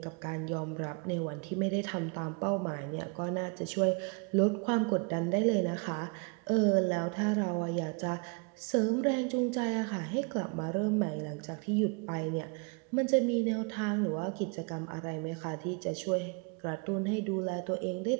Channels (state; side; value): quieter; left; 32.7 dB